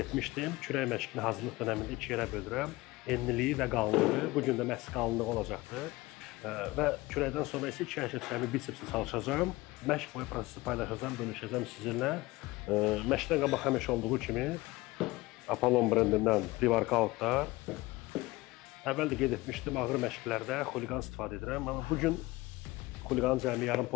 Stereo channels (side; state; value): right; quieter; 20.6 dB